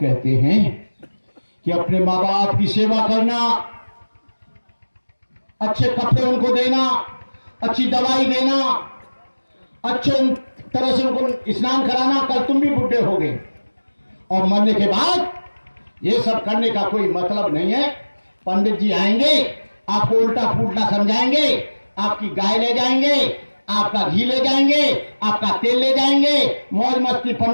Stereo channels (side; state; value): both; inverted; correlation -1.00